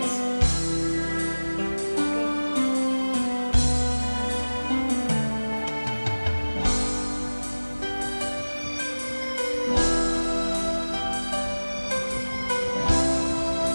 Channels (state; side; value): inverted; both; correlation -1.00